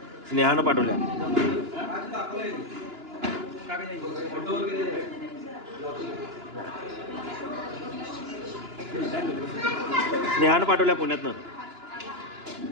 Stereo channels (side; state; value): left; late; 2.9 ms